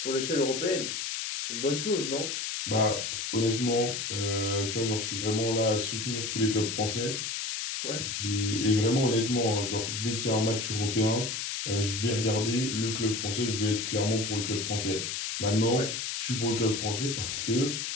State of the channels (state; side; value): noise; left; hiss, 3 dB below the sound